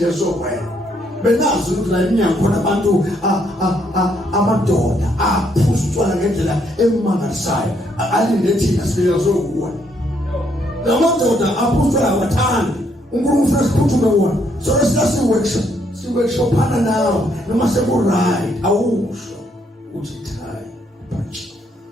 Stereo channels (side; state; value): both; normal; correlation 0.72